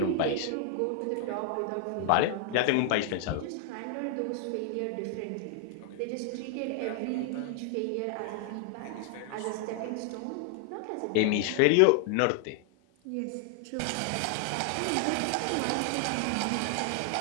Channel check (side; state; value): both; different; correlation 0.00